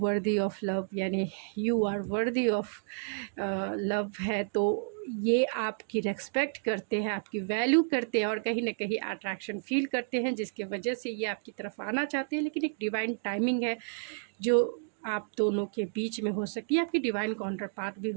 ऑफ लव, यानी you are worthy of love है। तो ये आपकी रेस्पेक्ट करते हैं, आपकी वैल्यू करते हैं और कहीं ना कहीं अट्रैक्शन फील करते हैं, जिसके वजह से ये आपकी तरफ आना चाहते हैं। लेकिन एक डिवाइन टाइमिंग है जो आप दोनों के बीच में हो सकती है। आपकी डिवाइन काउंटर पार्ट भी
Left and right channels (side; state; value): left; silent; digital silence